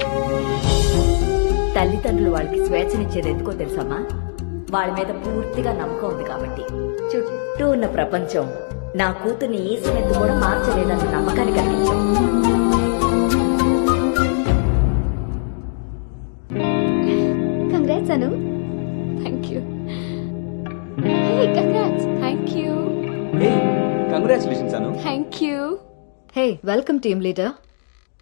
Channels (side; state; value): right; silent; digital silence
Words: తల్లిదండ్రులు వాళ్ళకి స్వేచ్ఛనిచ్చేది ఎందుకో తెలుసమ్మా? వాళ్ళ మీద పూర్తిగా నమ్మకం ఉంది కాబట్టి. చుట్టూ ఉన్న ప్రపంచం నా కూతుర్ని ఈసమెత్తు కూడా మార్చలేదన్న నమ్మకాన్ని కలిగించావు. Congrats Anu. Thank you. Hey congrats. Thank you. Hey congratulations Anu. Thank you. Hey welcome team leader.